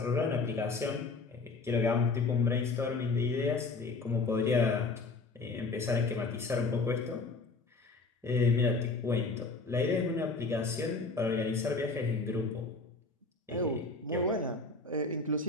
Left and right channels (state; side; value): quieter; right; 3.7 dB